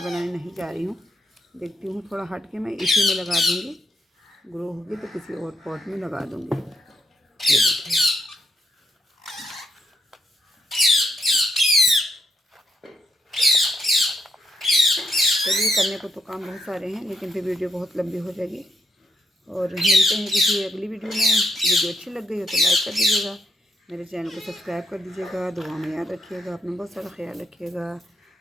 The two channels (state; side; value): normal; both; correlation 0.79